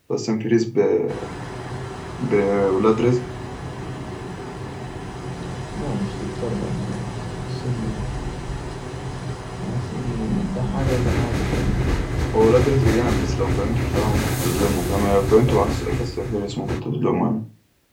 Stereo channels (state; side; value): identical; both; correlation 1.00